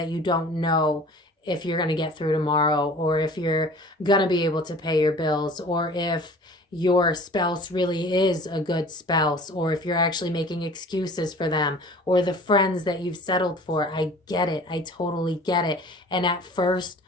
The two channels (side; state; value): both; normal; correlation 0.46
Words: you don't know if you're going to get through tomorrow, or if you're going to be able to pay your bills, or if your spouse really is a good spouse, or if you're actually making excuses for them, or the friends that you've settled for. I get it. I totally get it. And at first,